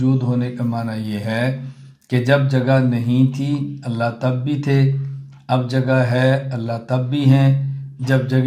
ہونے کا معنی یہ ہے کہ جب جگہ نہیں تھی اللہ تب بھی تھے، اب جگہ ہے اللہ تب بھی ہیں، جب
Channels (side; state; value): both; identical; correlation 1.00